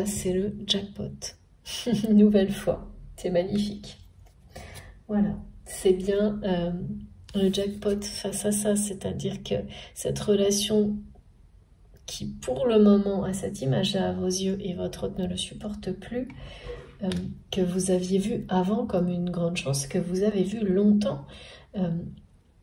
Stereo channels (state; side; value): identical; both; correlation 1.00